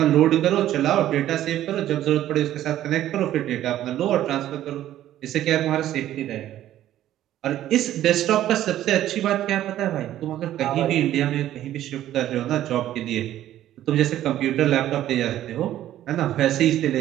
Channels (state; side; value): quieter; left; 12.8 dB